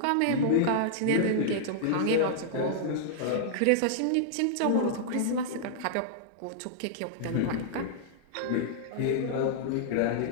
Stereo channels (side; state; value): both; different; correlation -0.01